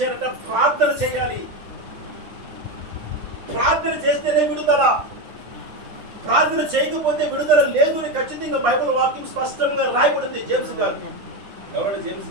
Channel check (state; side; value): late; left; 9.8 ms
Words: ప్రార్థన చేయాలి. ప్రార్థన చేస్తేనే విడుదల. ప్రార్థన చేయకపోతే విడుదల లేదు అని ఖచ్చితంగా బైబిల్ వాక్యం స్పష్టంగా రాయబడింది. జేమ్స్ గారు, ఎవరంటే జేమ్స్